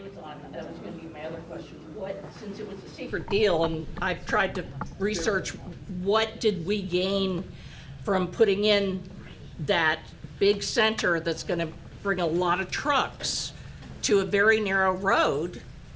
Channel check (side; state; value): both; identical; correlation 1.00